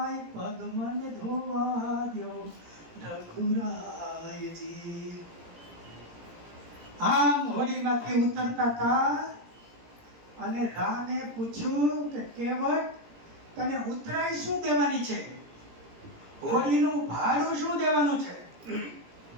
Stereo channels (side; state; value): left; late; 17 ms